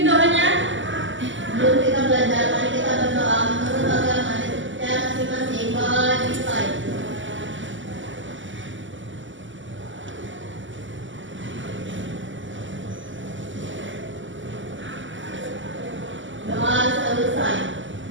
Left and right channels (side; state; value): left; late; 0.55 ms